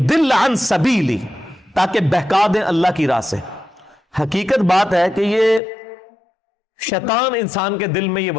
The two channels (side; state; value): right; drops out; at 5.6 s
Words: عَنْ سَبِيلِ, تاکہ بہکا دیں اللہ کی راہ سے. حقیقت بات ہے کہ یہ شیطان انسان کے دل میں یہ